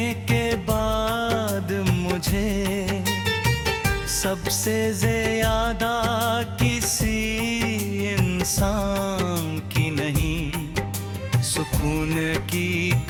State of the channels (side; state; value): both; identical; correlation 1.00